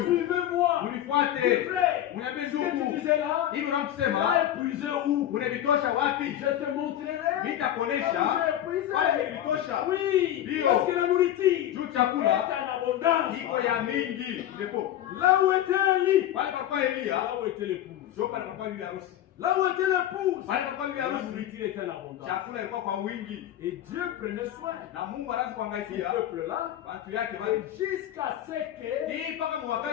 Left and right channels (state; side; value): quieter; right; 11.9 dB